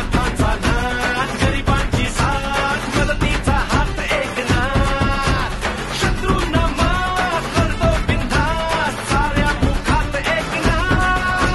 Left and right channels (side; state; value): both; identical; correlation 1.00